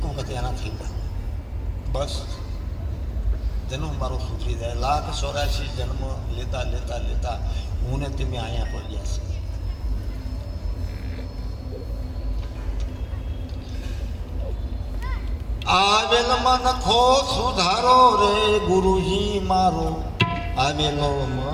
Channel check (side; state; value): both; identical; correlation 1.00